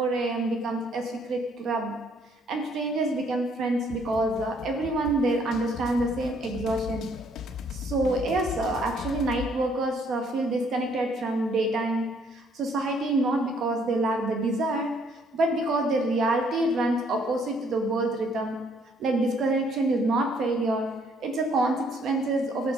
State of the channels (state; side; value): normal; both; correlation 0.65